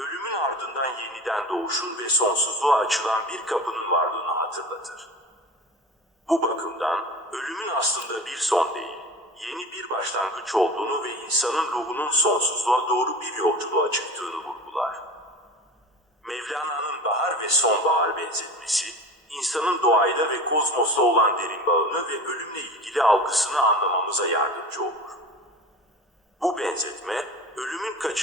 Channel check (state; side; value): normal; both; correlation 0.35